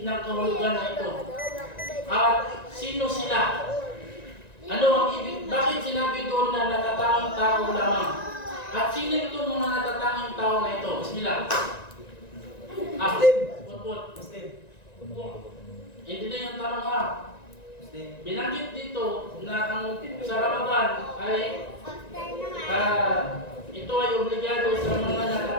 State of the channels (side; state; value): right; late; 1.9 ms